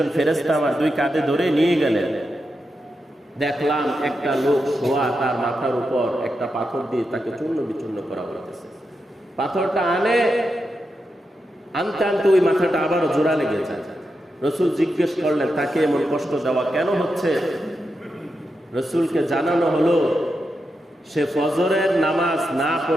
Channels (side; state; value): both; normal; correlation 0.87